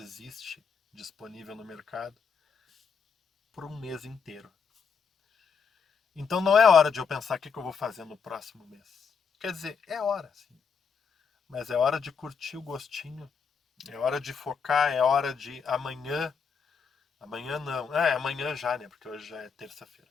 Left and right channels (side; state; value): right; quieter; 6.1 dB